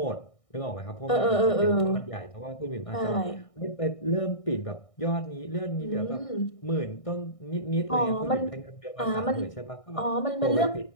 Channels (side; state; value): right; late; 1.6 ms